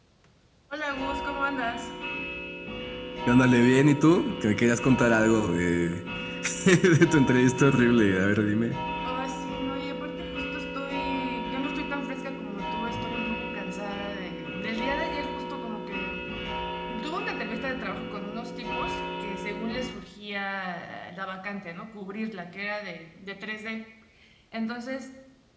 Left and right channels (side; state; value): both; identical; correlation 1.00